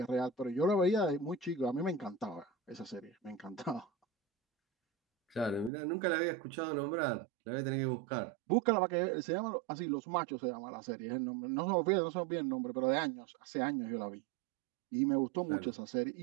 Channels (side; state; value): left; drops out; at 5.7 s